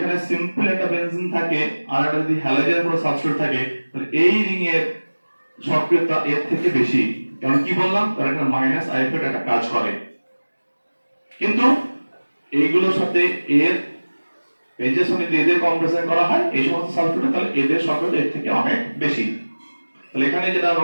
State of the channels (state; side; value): inverted; both; correlation -1.00